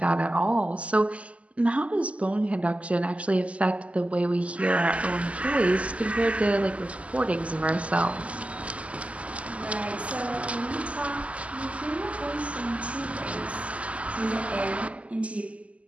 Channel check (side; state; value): left; late; 0.064 ms